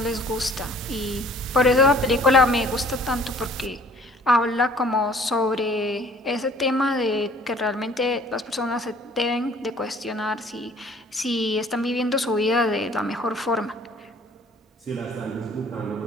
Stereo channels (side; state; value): both; normal; correlation 0.54